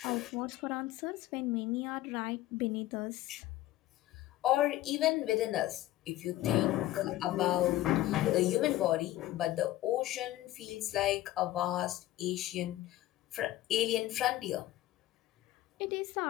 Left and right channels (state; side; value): quieter; right; 15.4 dB